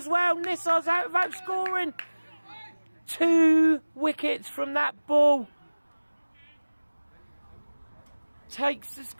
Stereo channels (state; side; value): inverted; both; correlation -1.00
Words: well. Nisar's out without scoring. 2 wickets from that ball. Takes the